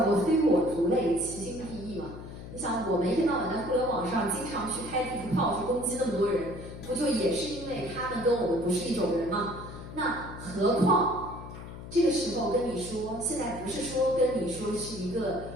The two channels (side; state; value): left; noise; hum, 12 dB below the sound